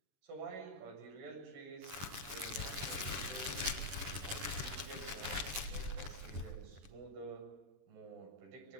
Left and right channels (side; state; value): left; late; 21 ms